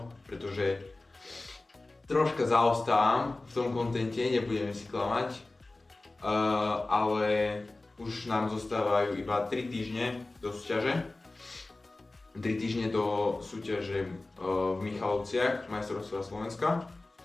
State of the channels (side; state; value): right; quieter; 3.0 dB